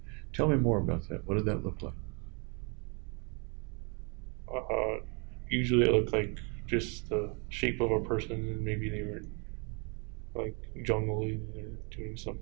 Tell me more about that. What did that look like? Usually it looked like just the shape of a person, and maybe they were like juggling or doing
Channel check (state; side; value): quieter; left; 34.5 dB